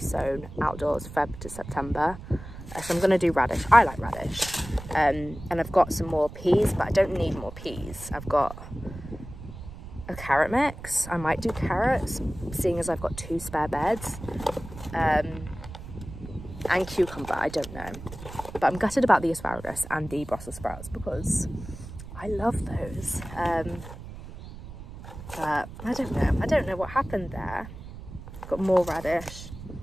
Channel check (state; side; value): noise; right; rumble, 13 dB below the sound